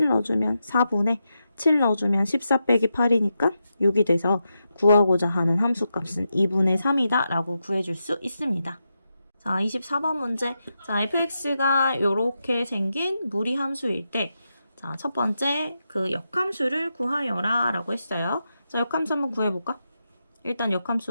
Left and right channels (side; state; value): both; inverted; correlation -0.87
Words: 넣어주면 4분의 7 넣어주면 14 빼기 8이니까 6이 돼서 구하고자 하는 함수값은 2분의 3이다 라고 구해줄 수 있습니다. 자, 24번 문제. 자, fx가 이렇게 생긴 무리함수일 때 자, 첫 번째 그 역함수를 구하여라 라고 했어요. 자, 역함수 한번 구해볼까? 일단